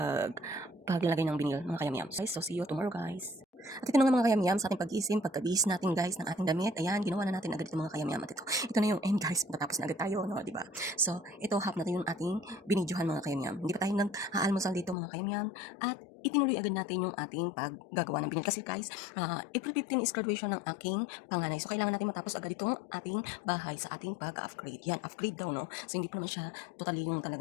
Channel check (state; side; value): drops out; right; at 15.0 s